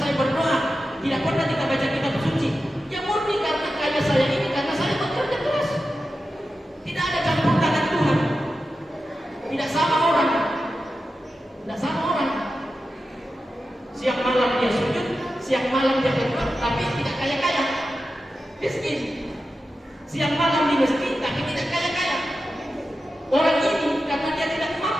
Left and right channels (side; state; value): both; normal; correlation 0.91